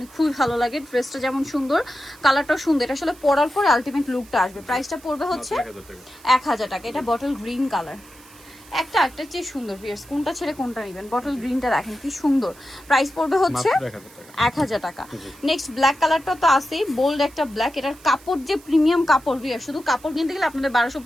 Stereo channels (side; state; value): right; noise; hiss, 24 dB below the sound